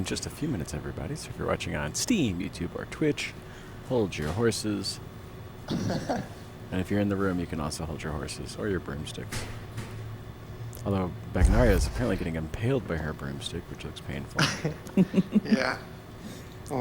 just a few minutes, everybody. So if you're watching on Steam, YouTube, or Twitch, hold your horses. And if you're in the room, you can also hold your horses or your broomsticks. Although Bagnaria is apparently getting impaled by her broomstick, which looks painful. Yeah.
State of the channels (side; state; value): both; identical; correlation 1.00